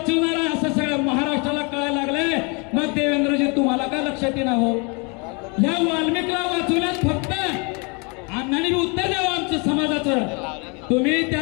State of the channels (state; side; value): quieter; right; 32.2 dB